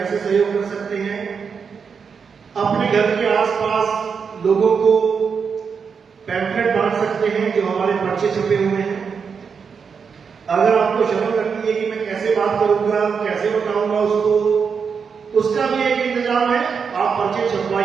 सहयोग कर सकते हैं? अपने घर के आसपास लोगों को पैम्फलेट बांट सकते हैं जो हमारे पर्चे छपे हुए हैं। अगर आपको शर्म लगती है कि मैं कैसे बात करूंगा, कैसे बताऊंगा उसको, उसका भी एक इंतजाम है। आप पर्चे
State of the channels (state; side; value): quieter; left; 6.1 dB